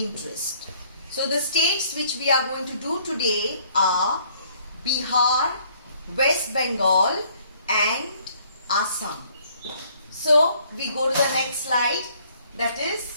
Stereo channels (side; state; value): both; inverted; correlation -0.62